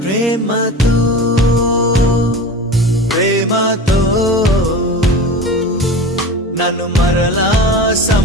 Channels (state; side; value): normal; both; correlation 0.32